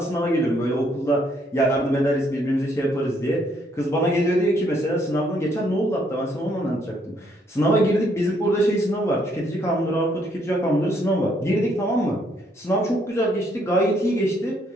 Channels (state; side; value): normal; both; correlation 0.70